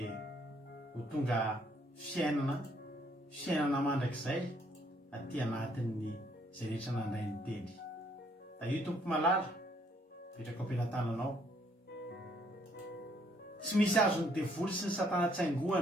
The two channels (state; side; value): normal; both; correlation 0.68